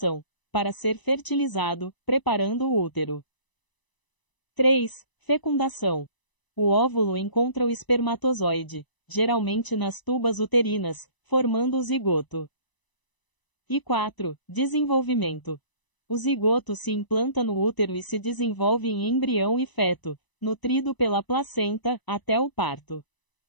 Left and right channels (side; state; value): right; late; 1.0 ms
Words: para ser fertilizado, preparando o útero. 3. Fecundação. O óvulo encontra o espermatozoide, geralmente nas tubas uterinas, formando o zigoto. E 4. Desenvolvimento. O zigoto se implanta no útero e se desenvolve em embrião e feto, nutrido pela placenta, até o parto.